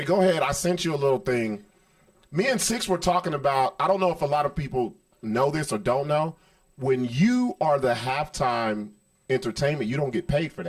go ahead. I sent you a little thing. Me and Sixx were talking about. I don't know if a lot of people know this or don't know. When you are the halftime entertainment, you don't get paid for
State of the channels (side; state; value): both; identical; correlation 1.00